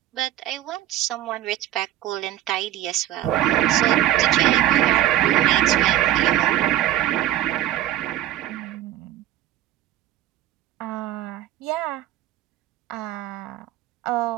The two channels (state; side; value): quieter; left; 13.2 dB